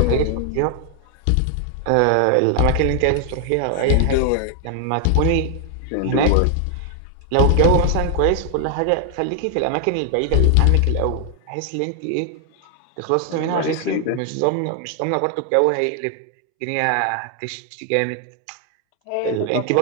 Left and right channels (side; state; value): both; different; correlation 0.00